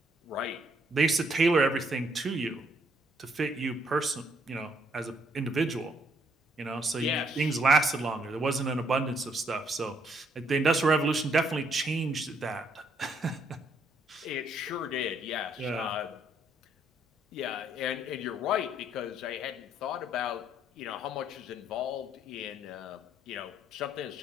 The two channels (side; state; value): both; normal; correlation 0.69